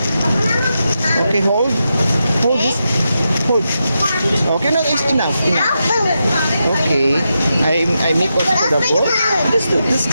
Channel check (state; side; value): inverted; both; correlation -0.87